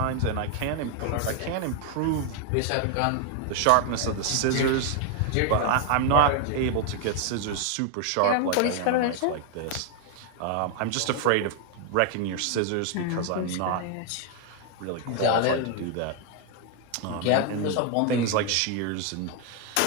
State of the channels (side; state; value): both; different; correlation 0.00